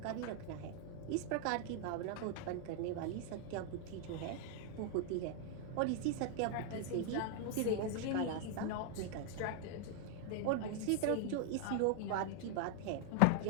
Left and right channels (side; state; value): both; different; correlation 0.00